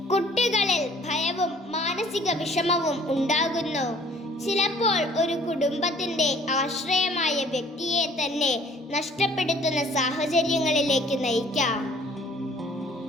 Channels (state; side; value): normal; both; correlation 0.56